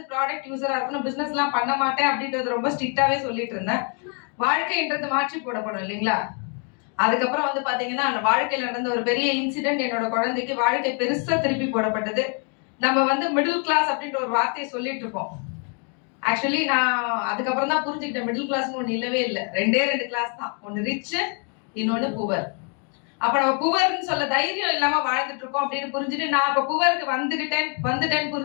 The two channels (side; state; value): right; quieter; 39.9 dB